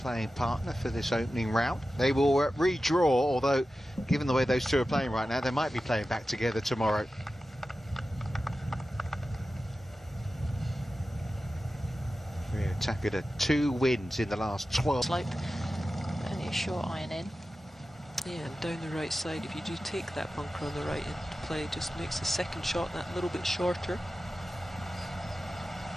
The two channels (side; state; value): both; normal; correlation 0.94